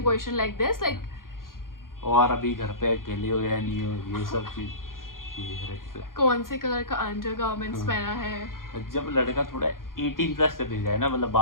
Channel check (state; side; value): late; right; 0.91 ms